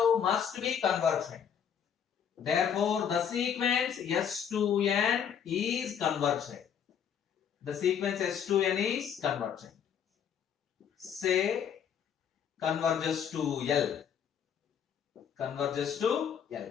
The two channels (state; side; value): quieter; right; 8.1 dB